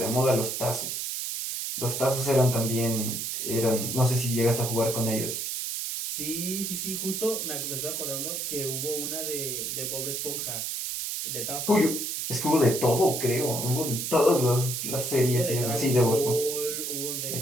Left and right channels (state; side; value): noise; right; hiss, 3 dB below the sound